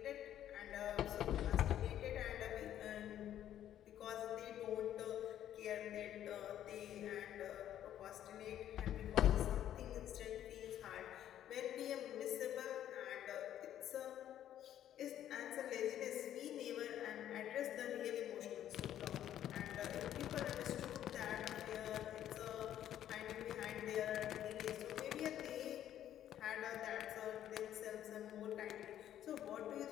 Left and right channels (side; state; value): right; quieter; 11.2 dB